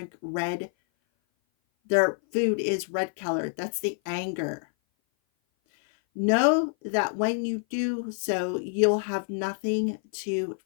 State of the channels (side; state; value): right; silent; 57 dB below the other